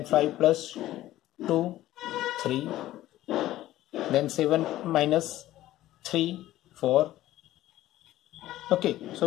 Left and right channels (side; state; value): right; quieter; 14.8 dB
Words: 5 plus 2 3. Then 7 minus 3 4. Okay, so